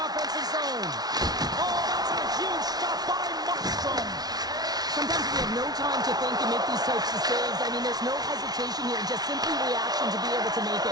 offensive zone. Oh, that's a huge stop by Markstrom. Sometimes we have no time to think and make these types of saves. I mean, there's no hesitation here, just simply reaction to be able to make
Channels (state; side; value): late; left; 0.19 ms